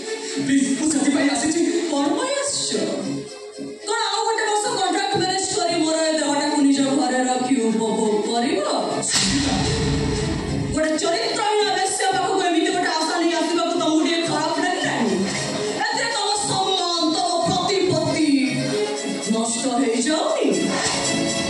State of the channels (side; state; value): both; identical; correlation 1.00